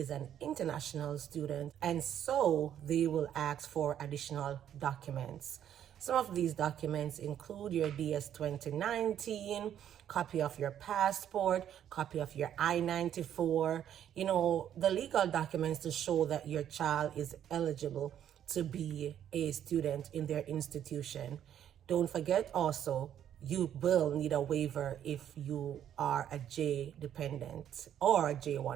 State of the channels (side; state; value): left; quieter; 10.2 dB